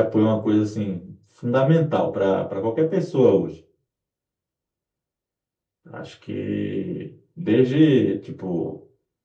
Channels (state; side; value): identical; both; correlation 1.00